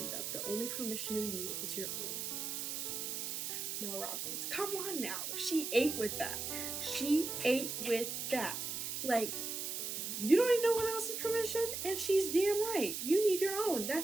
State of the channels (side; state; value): right; noise; hiss, 3 dB below the sound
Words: of. The only permission you need is your own. Mel Robbins. Come on now. She ate with that. She ate with that. Like, you don't need no one else's permission, and she's damn right. You need your own.